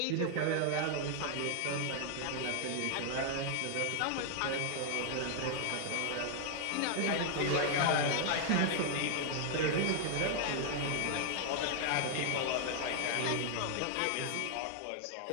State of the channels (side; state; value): both; different; correlation 0.00